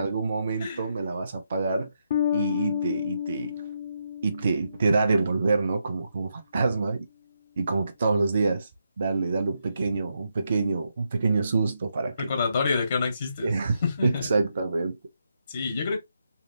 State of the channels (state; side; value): inverted; both; correlation -0.81